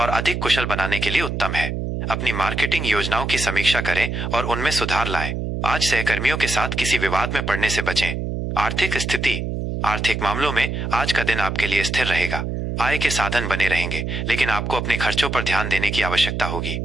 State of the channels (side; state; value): right; noise; hum, 3 dB below the sound